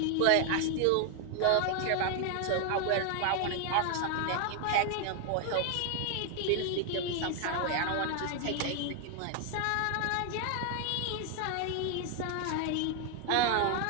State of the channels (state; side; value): different; both; correlation 0.01